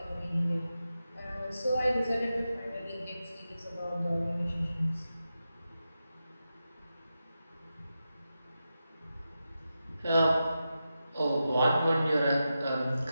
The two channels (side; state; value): both; inverted; correlation -0.90